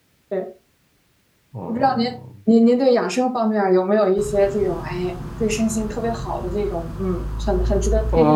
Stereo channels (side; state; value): both; identical; correlation 1.00